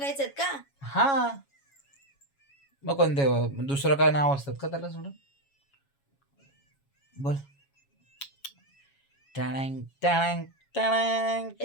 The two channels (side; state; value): right; late; 7.2 ms